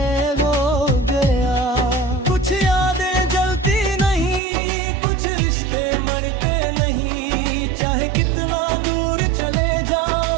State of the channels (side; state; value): left; drops out; at 4.4 s